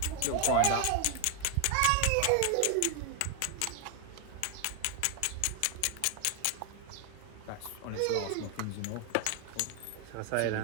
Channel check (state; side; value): different; both; correlation 0.01